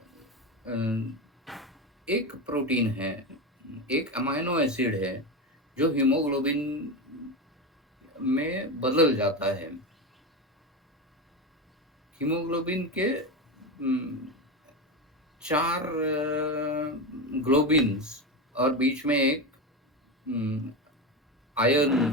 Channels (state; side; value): normal; both; correlation 0.18